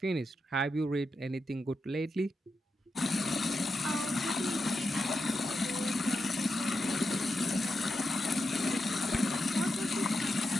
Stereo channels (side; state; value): both; normal; correlation 0.87